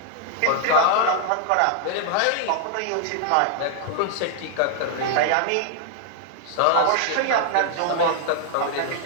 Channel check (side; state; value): both; different; correlation 0.00